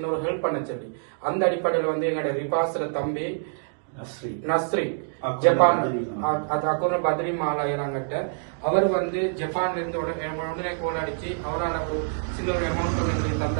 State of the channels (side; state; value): left; silent; digital silence